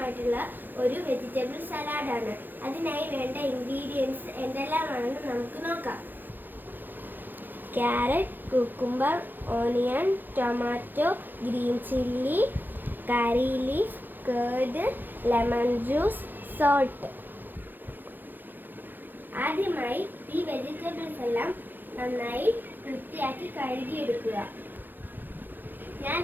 ഒരു വെജിറ്റബിൾ സലാഡാണ്. അതിനായി വേണ്ട ഇൻഗ്രീഡിയൻസ് എന്തെല്ലാമാണെന്ന് നമുക്ക് നോക്കാം. Carrot, cucumber, onion, tomato, green chilli, കറി leaf, curd, lemon juice, salt. ആദ്യമായി ഈ വെജിറ്റബിൾസ് എല്ലാം നന്നായി വൃത്തിയാക്കി കഴുകിയെടുക്കുക.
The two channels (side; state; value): left; late; 0.090 ms